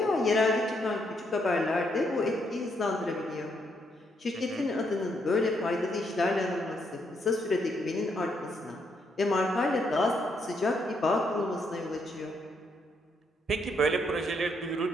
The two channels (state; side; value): normal; both; correlation 0.75